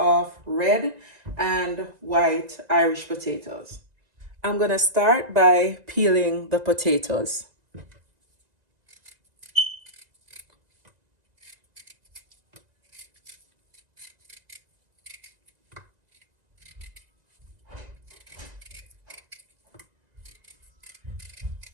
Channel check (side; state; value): left; late; 1.9 ms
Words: red and white Irish potatoes. I'm going to start by peeling the potatoes.